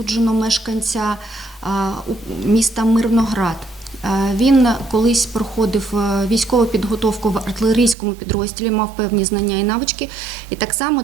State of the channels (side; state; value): left; drops out; at 8.0 s